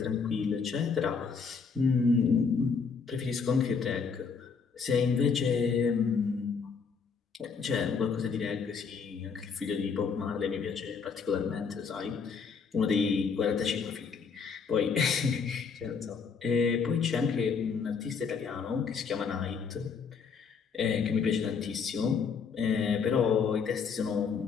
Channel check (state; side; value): quieter; right; 5.7 dB